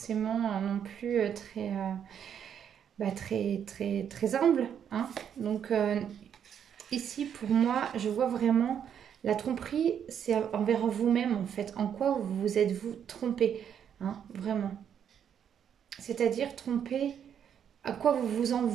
non plus très humble. Hein. Donc, ici, pour moi, je vois vraiment la tromperie, c'est envers vous-même, en fait. En quoi vous êtes-vous trompé, hein, vraiment. C'est-à-dire tromper, à quoi vous vous en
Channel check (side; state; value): left; quieter; 8.6 dB